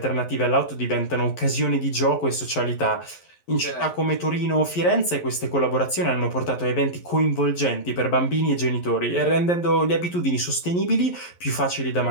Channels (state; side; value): late; right; 11 ms